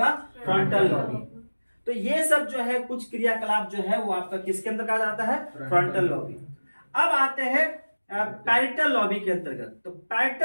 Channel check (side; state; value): both; inverted; correlation -1.00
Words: Frontal lobby. तो ये सब जो है कुछ क्रियाकलाप जो है वो आपका किसके अंतर्गत आता है? Frontal lobby. अब आते हैं पैरिटल लॉबी के अंतर्गत। तो